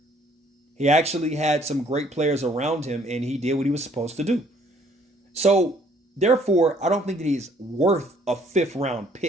he actually had some great players around him and he did what he was supposed to do. So, therefore, I don't think that he's worth a 5th round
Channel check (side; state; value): both; normal; correlation 0.61